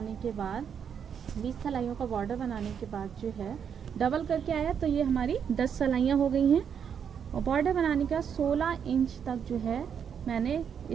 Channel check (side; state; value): left; quieter; 7.7 dB